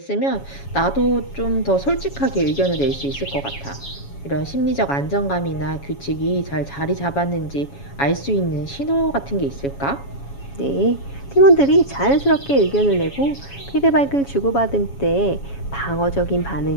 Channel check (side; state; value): right; late; 7.2 ms